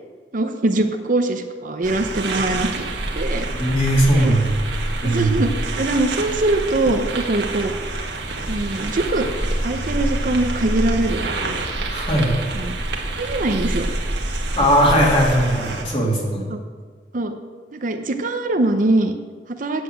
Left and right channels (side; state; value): both; normal; correlation 0.56